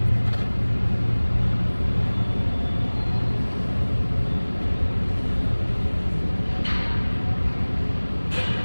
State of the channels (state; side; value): inverted; both; correlation -1.00